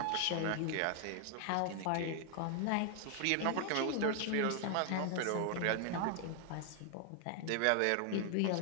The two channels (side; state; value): both; different; correlation 0.00